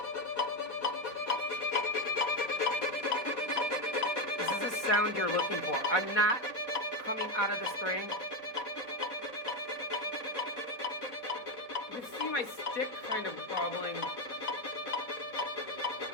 This is the sound you're looking for. I'm not coming out of the string. You can see my stick kind of wobbling.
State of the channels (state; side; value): late; right; 4.3 ms